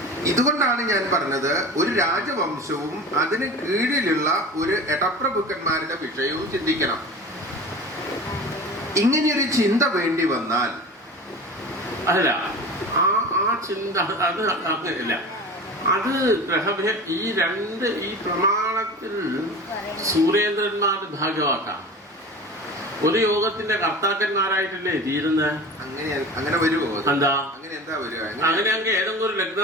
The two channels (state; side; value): normal; both; correlation 0.35